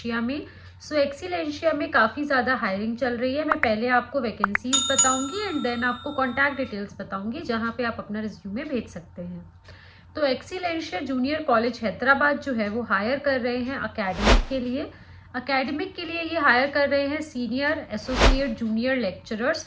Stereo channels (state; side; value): identical; both; correlation 1.00